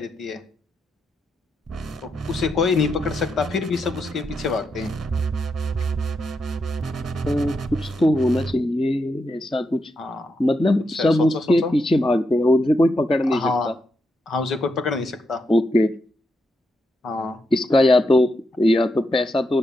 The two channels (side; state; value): both; normal; correlation 0.83